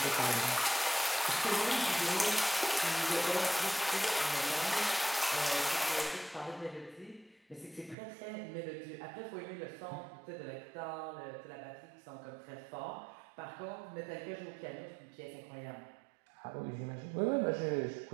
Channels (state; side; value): drops out; left; at 8.0 s